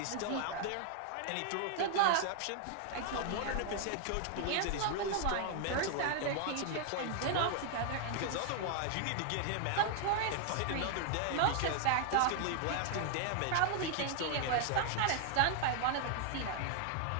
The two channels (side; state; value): both; different; correlation 0.00